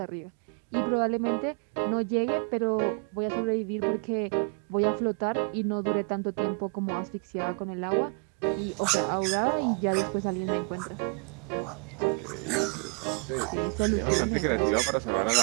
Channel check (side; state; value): left; quieter; 37.8 dB